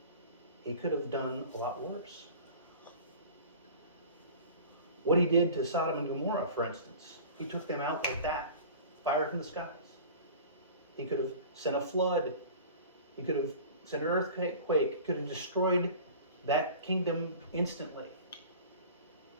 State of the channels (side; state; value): both; inverted; correlation -0.41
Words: he could have done a lot worse. What he did to Sodom and Gomorrah, for instance, he took them out like that, fire from the skies. He could have sent a flood. He could have sent an earthquake. He could have destroyed that kingdom instantly.